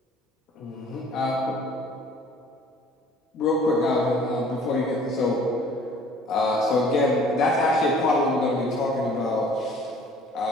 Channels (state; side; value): normal; both; correlation 0.52